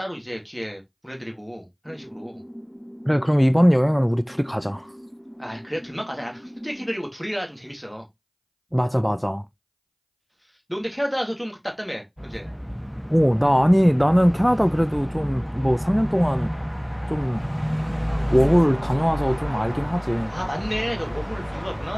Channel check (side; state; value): both; identical; correlation 1.00